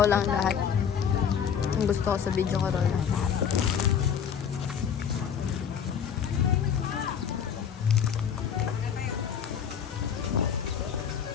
lang lahat. Ang gusto ko sa video ko, raw lang lahat.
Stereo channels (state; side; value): quieter; right; 7.8 dB